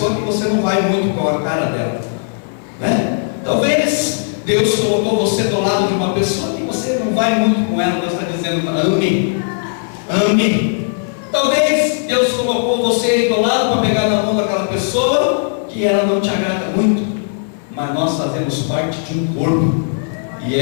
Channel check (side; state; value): right; silent; digital silence